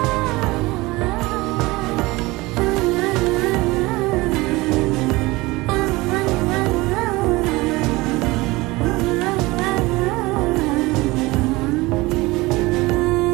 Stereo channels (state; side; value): quieter; left; 21.5 dB